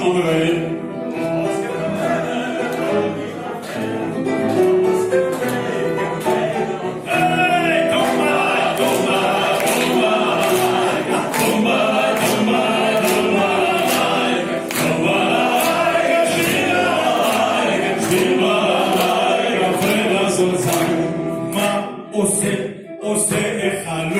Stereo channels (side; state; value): both; identical; correlation 1.00